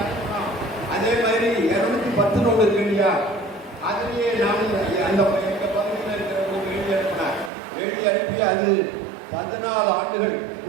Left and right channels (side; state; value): left; drops out; at 7.5 s